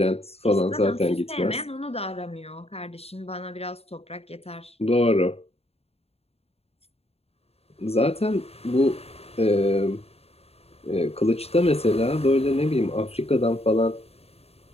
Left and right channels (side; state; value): right; late; 0.29 ms